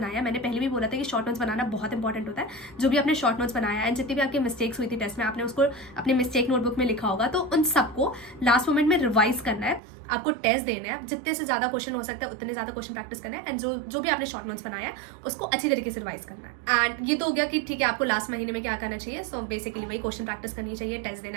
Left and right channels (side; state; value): left; drops out; at 9.8 s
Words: मैंने पहले भी बोला था कि शॉर्ट नोट्स बनाना बहुत इंपॉर्टेंट होता है। जो भी आपने शॉर्ट नोट्स बनाया एंड जितनी भी आपकी मिस्टेक्स हुई थी टेस्ट में, आपने उसको अपने मिस्टेक नोटबुक में लिखा होगा, तो उन सबको लास्ट मोमेंट में रिवाइज करना है। आपको टेस्ट देना है, जितने से ज्यादा क्वेश्चन हो सकता है उतने ज्यादा क्वेश्चन प्रैक्टिस करना है, एंड जो भी आपने शॉर्ट नोट्स बनाया है उसको अच्छी तरीके से रिवाइज करना है। एंड ये तो हो गया कि ठीक है आपको लास्ट महीने में क्या करना चाहिए। सो बेसिकली वही क्वेश्चन प्रैक्टिस करनी चाहिए, टेस्ट